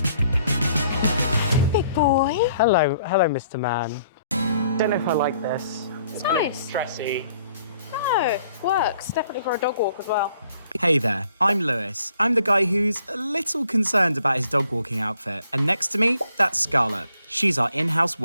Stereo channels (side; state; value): both; inverted; correlation -0.64